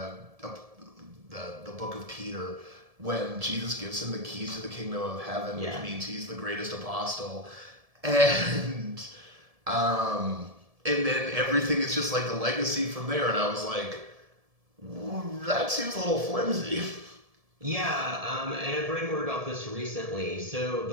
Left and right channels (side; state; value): left; late; 1.7 ms